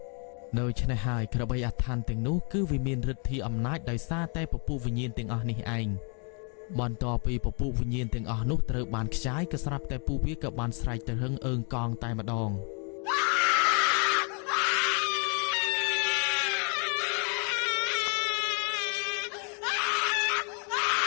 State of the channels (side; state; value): right; quieter; 38.0 dB